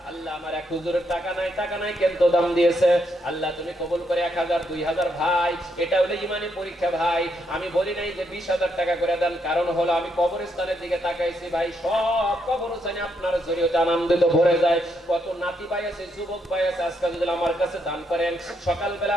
আল্লাহ আমার এক হুজুরের টাকা নাই, টাকা নাই কিন্তু দাম দিয়েছে। আল্লাহ তুমি কবুল করে 1000 2000 ভাই, এটা হলো ইমানি পরীক্ষা ভাই। আমি বলি নাই যে 20000 টাকা করে দেন, কারণ হলো আমি কবরস্থানের দিকে তাকাইছি ভাই, সব কবরস্থানে আপনার জরিয়তে আনন্দিত ভরে যায়। কত নাতি ভাই আছে, যুবক ভাই আছে, আজকে যদি আমার কাছে দান করেন, সকালবেলা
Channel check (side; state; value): both; normal; correlation 0.77